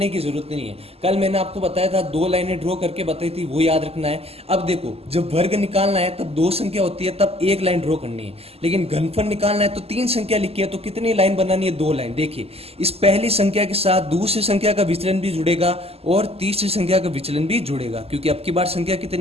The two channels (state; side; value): late; left; 0.29 ms